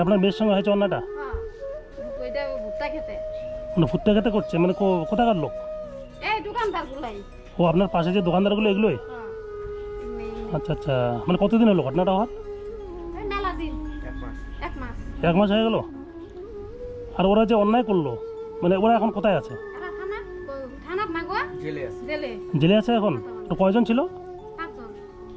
আপনার মেয়ের সঙ্গে হয়েছে অন্যায়টা? হ্যাঁ, ওইটা ভুট্টা খেতে। মানে ফুটতে খেতে করছে, মানে কোথাকার লোক? এই দোকানদার গুলাই। ও আপনার পাশে যে দোকানদারগুলো এগুলোই? হ্যাঁ, আচ্ছা আচ্ছা, মানে কতদিন হলো ঘটনাটা হওয়ার? এই মেলা দিন। এক মাস। 1 মাস হয়ে গেল? আর ওরা যে অন্যায় করলো, মানে ওরা এখন কোথায় আছে? এরা থানাত না গো? জেলে আছে। জেলে। জেলে আছে এখন? তো কয়জন ছিল? 5 জন।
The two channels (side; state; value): both; identical; correlation 1.00